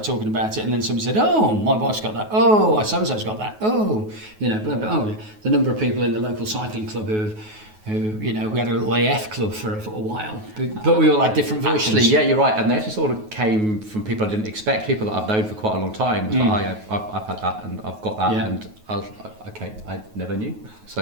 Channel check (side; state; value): left; late; 9.4 ms